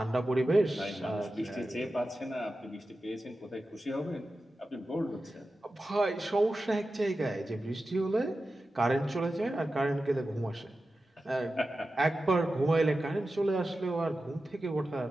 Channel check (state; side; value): normal; both; correlation 0.93